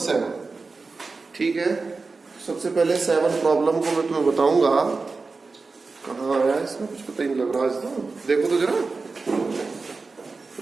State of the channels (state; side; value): quieter; left; 4.1 dB